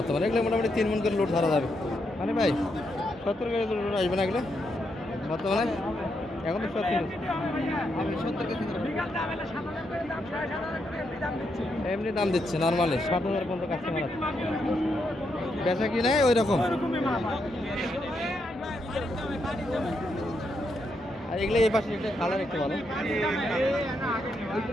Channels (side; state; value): both; normal; correlation 0.80